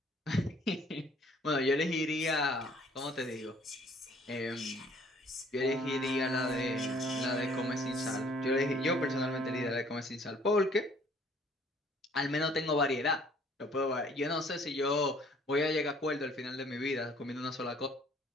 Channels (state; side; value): normal; both; correlation 0.58